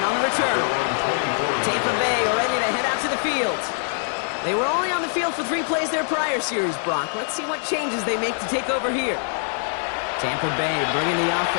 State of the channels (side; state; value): right; silent; 61 dB below the other